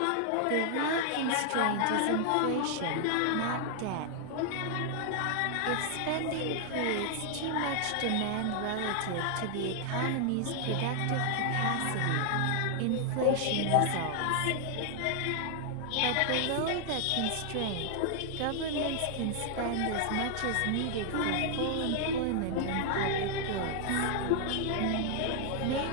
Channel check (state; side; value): different; both; correlation 0.00